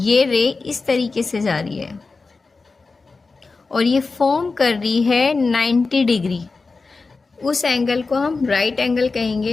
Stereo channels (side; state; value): right; quieter; 4.0 dB